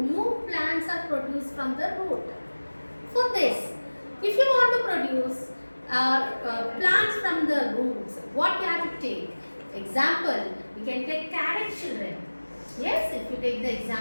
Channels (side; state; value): both; inverted; correlation -1.00